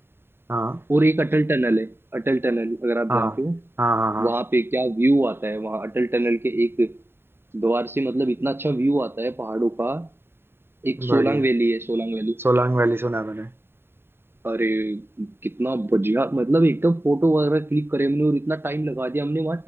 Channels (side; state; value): left; late; 0.11 ms